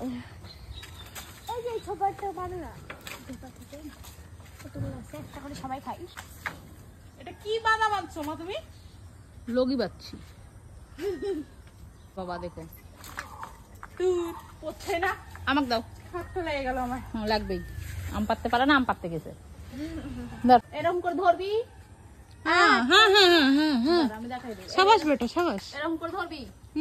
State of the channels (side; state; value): both; identical; correlation 1.00